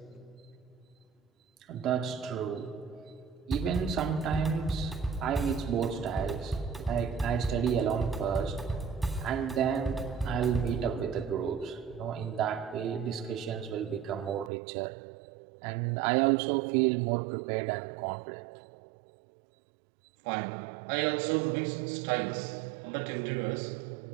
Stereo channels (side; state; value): left; drops out; at 14.5 s